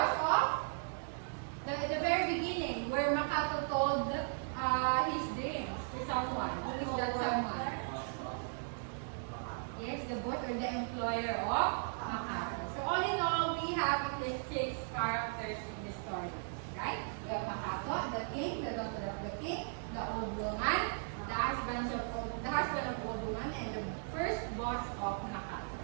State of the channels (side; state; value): left; silent; digital silence